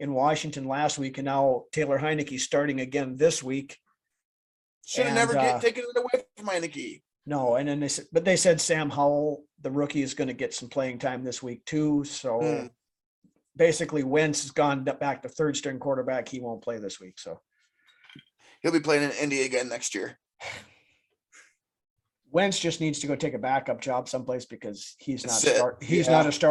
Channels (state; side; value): identical; both; correlation 1.00